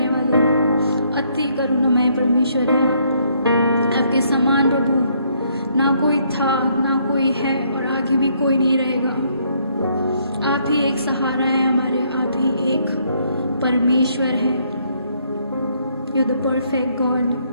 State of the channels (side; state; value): both; inverted; correlation -0.70